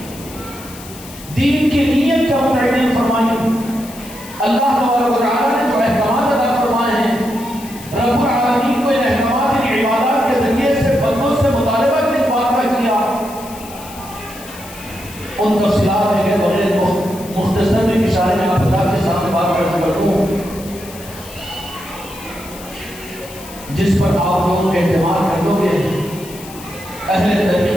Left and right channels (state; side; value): noise; left; hiss, 17 dB below the sound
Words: دین کی نیت کیا متعین فرمائی۔ اللہ تبارک و تعالیٰ نے جو احکامات ادا فرمائے ہیں، رب العالمین کو ان احکامات کی عبادات کے ذریعے سے بندوں سے مطالبہ کس بات کا کیا، ان تفصیلات میں کہ بغیر مختصر میں اشارے میں آپ حضرات کے سامنے بات کر دوں جس پر آپ لوگوں کے اعتماد کر لو گے۔ اہل